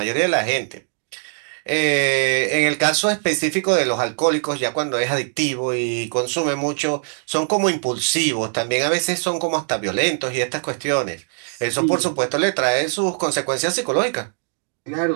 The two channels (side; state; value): left; silent; 65 dB below the other